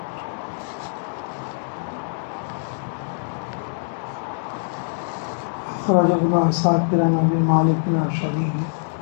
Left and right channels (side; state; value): right; silent; digital silence